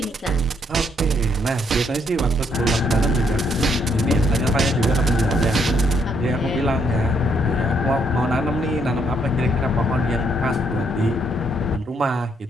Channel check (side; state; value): both; normal; correlation 0.72